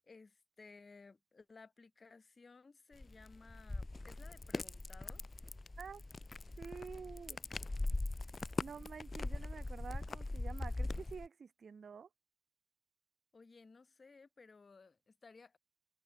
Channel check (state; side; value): normal; both; correlation 0.96